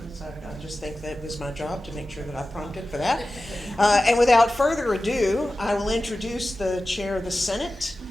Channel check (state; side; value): normal; both; correlation 0.95